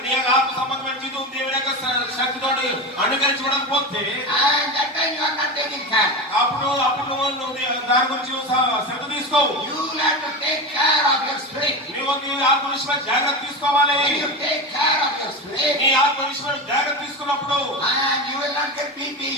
యొక్క ఆత్మ సంబంధమైన జీవితం దేవుని యొక్క శక్తితో అనుకరించడం పోతే and that time you are not taking care. అప్పుడు నువ్వు దాని గురించి శ్రద్ధ తీసుకోవు. You will have to take care of your spirit. నువ్వు నీ ఆత్మ విషయమై జాగ్రత్త తీసుకోవాలి. When you take care of your spirit, నీ ఆత్మ విషయమై జాగ్రత్త తీసుకున్నప్పుడు and you will not get BP,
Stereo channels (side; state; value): both; normal; correlation 0.22